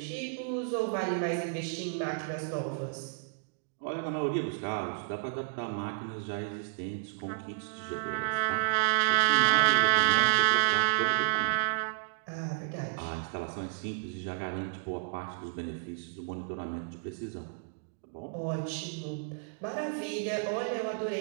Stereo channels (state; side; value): silent; left; digital silence